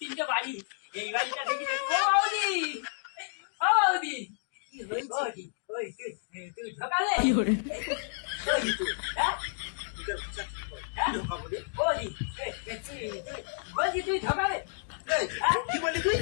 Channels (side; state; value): right; silent; digital silence